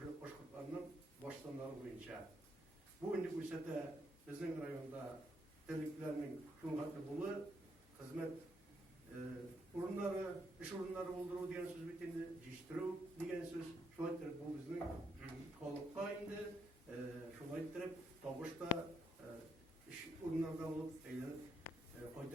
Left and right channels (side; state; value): both; normal; correlation 0.76